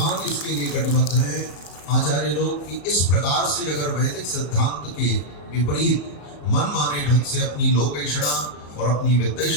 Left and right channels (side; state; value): right; late; 34 ms